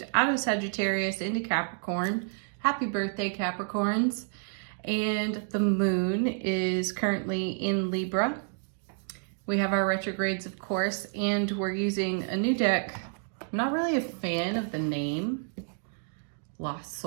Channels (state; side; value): silent; left; 58 dB below the other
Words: out of Sagittarius into Capricorn. Happy birthday, Capricorns. And the moon is currently in Libra. We have our retrogrades, of course, and we're using a new deck. I'm not really a fan of the name. Lost